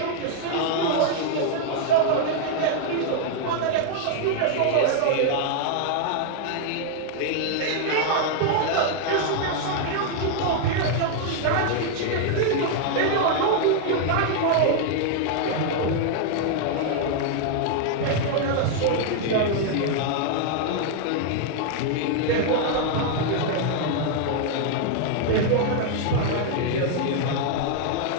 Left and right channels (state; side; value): different; both; correlation 0.00